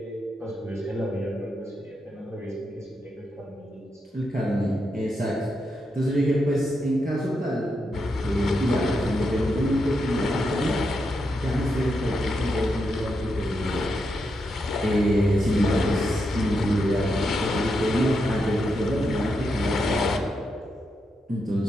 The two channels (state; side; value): normal; both; correlation 0.83